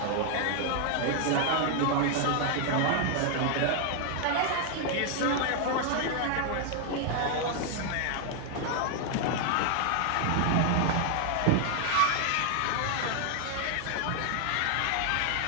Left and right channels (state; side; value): different; both; correlation 0.00